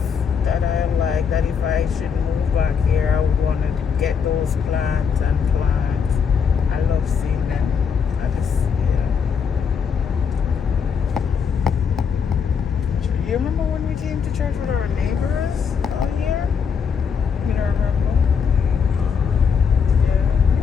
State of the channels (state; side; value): quieter; right; 6.5 dB